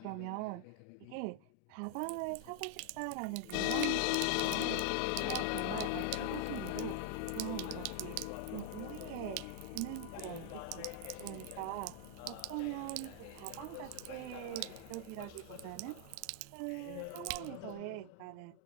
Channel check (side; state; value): both; different; correlation 0.00